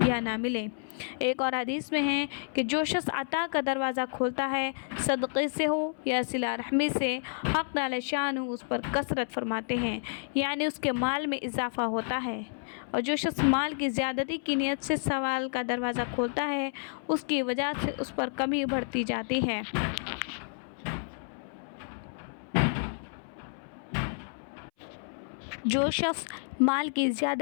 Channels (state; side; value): silent; right; 58 dB below the other